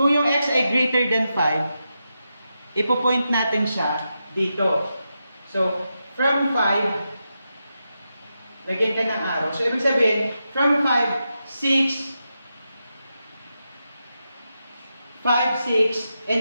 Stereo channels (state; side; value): inverted; both; correlation -0.87